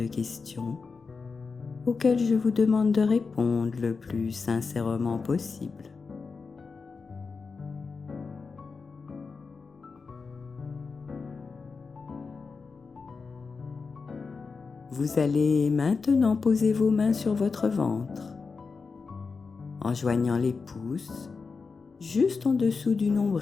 questions auxquelles je vous demande de répondre le plus sincèrement possible. Vous allez maintenant poser vos mains sur votre ventre, en joignant les pouces juste en dessous du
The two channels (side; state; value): right; quieter; 4.7 dB